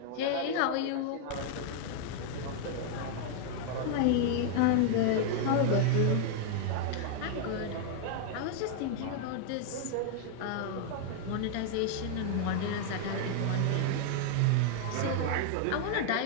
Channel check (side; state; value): both; different; correlation 0.00